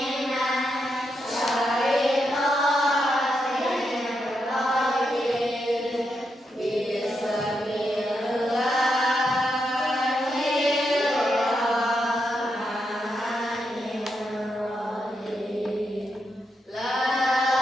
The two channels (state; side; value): normal; both; correlation 0.83